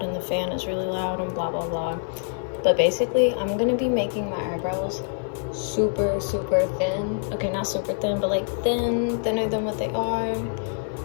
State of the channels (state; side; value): silent; right; 62 dB below the other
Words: and the fan is really loud and blah blah blah. But basically, I'm gonna be making my eyebrows super thin. Okay, not super thin, but like thinner than what they are.